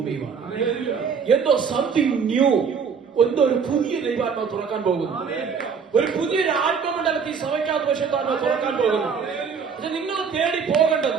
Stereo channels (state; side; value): quieter; left; 6.1 dB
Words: എന്തോ സംതിങ് ന്യൂ, എന്തോ ഒരു പുതിയ ദൈവാത്മാവ് തുറക്കാൻ പോകുന്നു. ഒരു പുതിയൊരു ആത്മമണ്ഡലത്തിൽ സഭയ്ക്കകത്ത് പരിശുദ്ധാത്മാവ് തുറക്കാൻ പോകുന്നു. പക്ഷെ നിങ്ങൾ തേടി